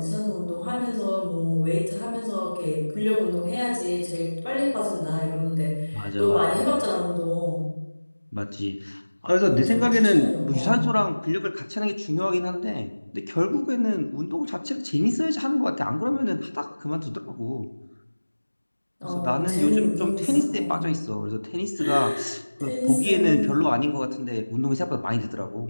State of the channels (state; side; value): inverted; both; correlation -1.00